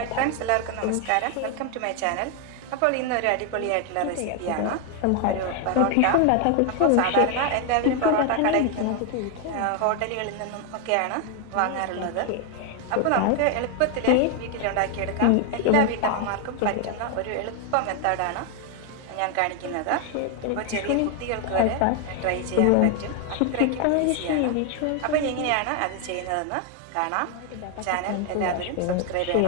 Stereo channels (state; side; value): different; both; correlation 0.01